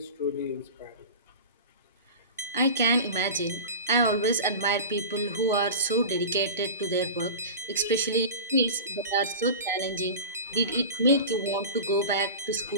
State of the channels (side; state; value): both; inverted; correlation -0.32